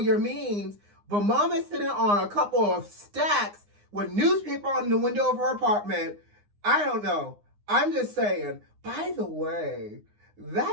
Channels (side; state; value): left; late; 9.7 ms